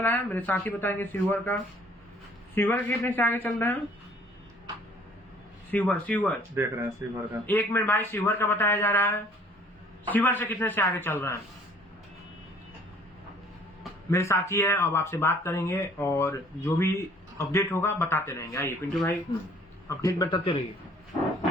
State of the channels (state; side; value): normal; both; correlation 0.56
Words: है? मेरे साथी बताएंगे। सीवर का कितने से आगे चल रहे हैं? सीवर देख रहे हैं सीवर का। एक मिनट भाई, सीवर का बताया जा रहा है। सीवर से कितने से आगे चल रहे हैं? मेरे साथी है, अब आपसे बात करेंगे और जो भी अपडेट होगा बताते रहेंगे। आइए पिंटू भाई अपडेट बताते रहिए।